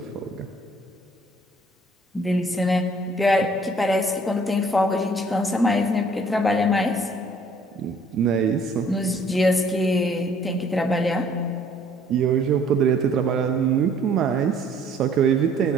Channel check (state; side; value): normal; both; correlation 0.59